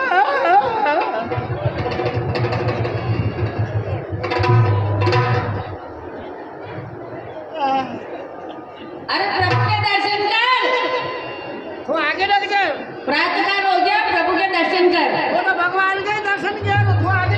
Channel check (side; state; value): both; identical; correlation 1.00